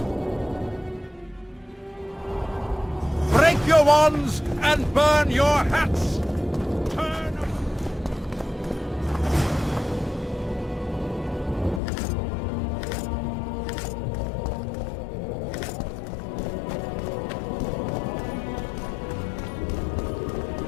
Break your wands and burn your hats! Turn...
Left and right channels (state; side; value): drops out; right; at 11.8 s